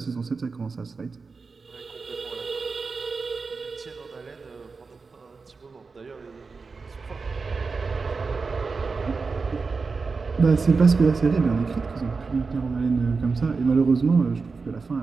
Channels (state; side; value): quieter; left; 4.5 dB